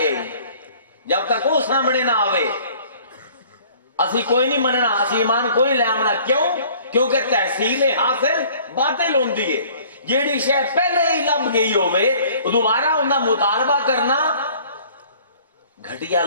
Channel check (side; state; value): both; inverted; correlation -0.52